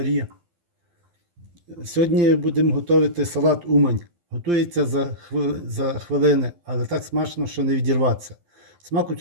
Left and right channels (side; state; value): left; late; 12 ms